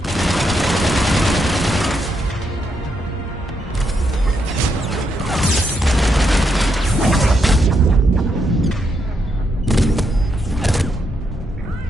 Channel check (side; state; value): both; normal; correlation 0.79